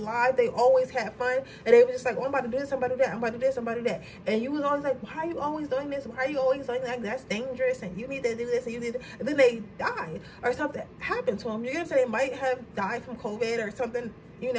they always had fun, and they were just like, oh, I'm about to do this, I'm about to do that, I'm about to do this, I'm about to do that. And you was always like, why are you always doing this? Why are you always doing that? That's dangerous, and you need to do this, and you need to, and then they died, or something happened to them. You're gonna say they might have died from COVID or something, you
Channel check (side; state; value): both; identical; correlation 1.00